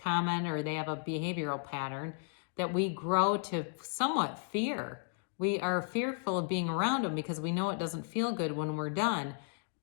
or they have a behavioral pattern that we grow to somewhat fear. We are fearful of being around them because we know it doesn't feel good when we're done.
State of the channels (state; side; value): silent; right; 55 dB below the other